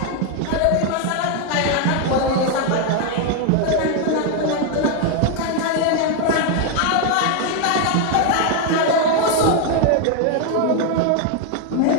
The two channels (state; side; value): different; both; correlation 0.01